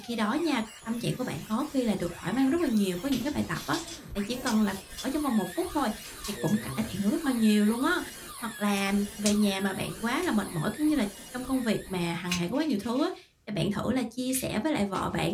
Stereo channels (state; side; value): identical; both; correlation 1.00